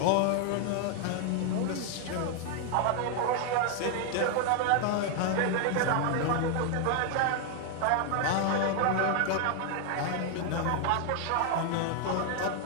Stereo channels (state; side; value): different; both; correlation 0.00